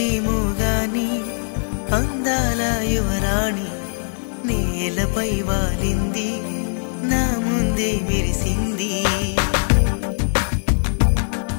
గాని అందాల యువరాణి నేలపై వాలింది నా ముందే మెరిసింది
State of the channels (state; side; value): silent; right; digital silence